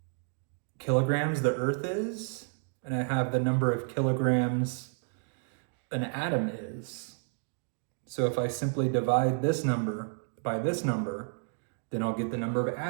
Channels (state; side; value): silent; left; 57 dB below the other